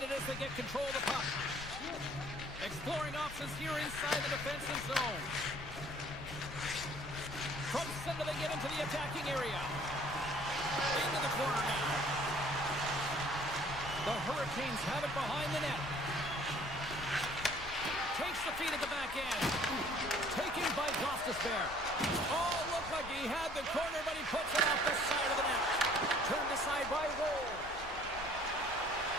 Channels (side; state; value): left; noise; rumble, 14 dB below the sound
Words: as they get control of the puck. Exploring options here inside the defensive zone. From center they get into the attacking area. Into the corner now. The Hurricanes have it behind the net. Takes the feed at the back end. Taken by Gostisbehere. Oh, looked like he had the corner, but he puts it off the side of the net. Turned aside by Roll.